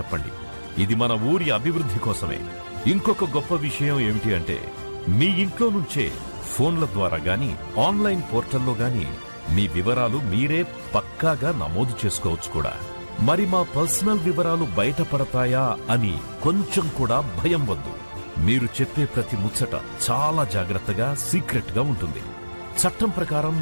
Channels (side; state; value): both; inverted; correlation -1.00